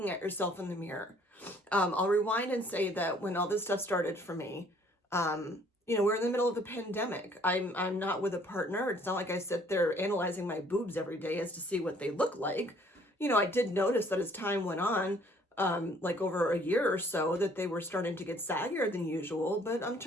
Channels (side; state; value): both; normal; correlation 0.59